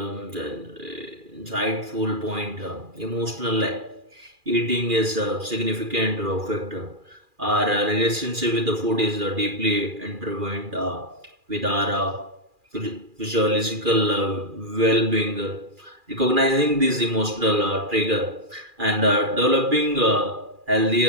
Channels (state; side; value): late; left; 2.4 ms